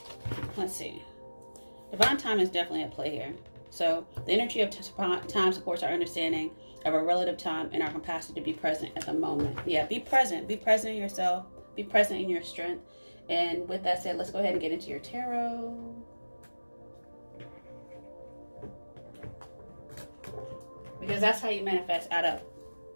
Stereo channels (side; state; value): both; inverted; correlation -1.00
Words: let's see. Divine time is definitely at play here. So the energy of time supports our understanding of our relative time and our capacity to be present at the moment. Yeah, be present. Be present in yourself. Be present in your strength. And with that said, let's go ahead and get into your tarot. Because that's how you manifest out of